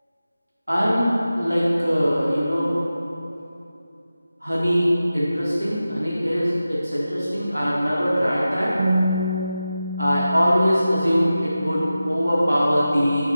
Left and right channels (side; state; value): both; inverted; correlation -0.93